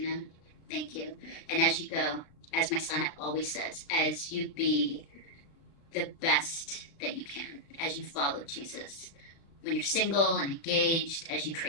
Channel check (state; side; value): late; right; 36 ms